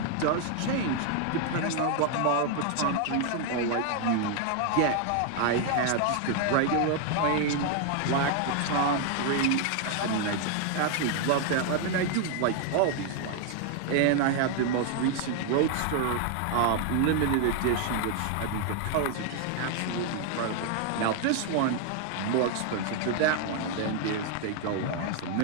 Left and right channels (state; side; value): different; both; correlation 0.00